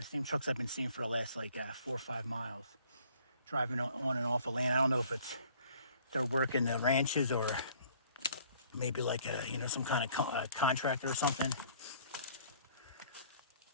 same trucks I've been seeing for the last like 4 or 5 miles, driving on and off of land. I don't know if they're working the ranches or maybe like some kind of contractor or something.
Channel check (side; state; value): both; inverted; correlation -0.57